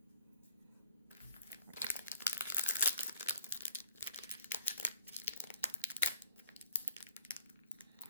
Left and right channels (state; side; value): inverted; both; correlation -0.55